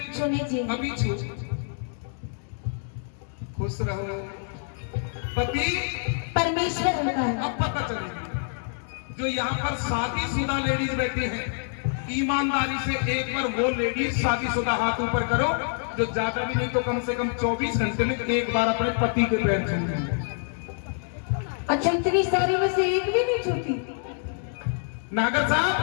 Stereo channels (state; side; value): silent; right; digital silence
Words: छूने चाहिए। अभी छू। खुश रहो। पति परमेश्वर होता है। अब पता चलेगी। जो यहाँ पर शादीशुदा लेडीज बैठी हैं, ईमानदारी से एक बार वो लेडीज शादीशुदा हाथ ऊपर करो जो ज्यादा भी नहीं तो कम से कम 24 घंटे में एक बार अपने पति के पैर छूते। अच्छा, इतनी सारी में से एक भी नहीं छूती? नागर साहब,